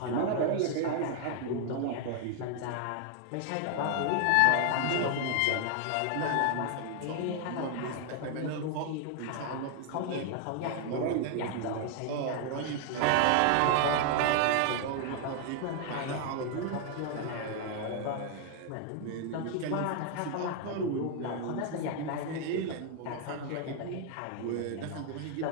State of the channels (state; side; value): different; both; correlation 0.00